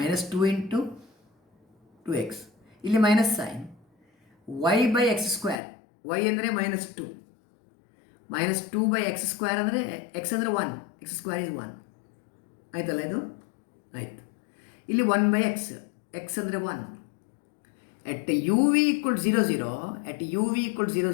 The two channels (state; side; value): drops out; right; at 5.6 s